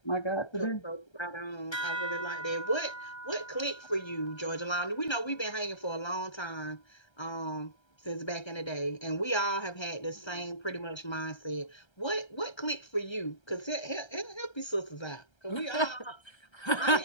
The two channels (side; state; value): right; late; 1.3 ms